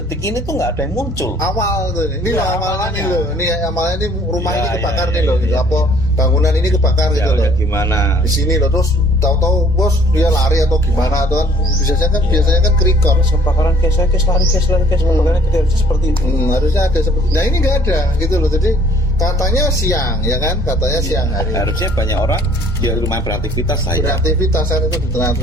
ini tuh nggak ada yang muncul. Awal tuh ini awalnya ini rumah ini kebakar gitu, apa bangunan ini kebakar gitu loh. Gimana? Di sini loh, terus tahu-tahu bos dia lari atau gimana atau kan biasanya kan ke-record. Kebakaran guys, lari kebakaran kita harusnya seperti itu. Harusnya ada seperti. Nah ini nggak ada gitu loh, jadi katanya siang ya kan, katanya siang hari. Harusnya banyak orang ya lumayan beraktivitas lah ya. Beraktivitas kan itu di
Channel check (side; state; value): both; normal; correlation 0.58